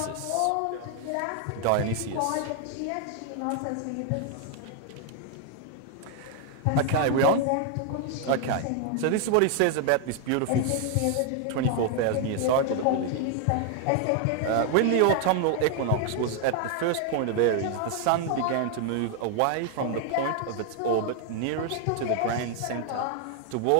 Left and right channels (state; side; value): different; both; correlation 0.00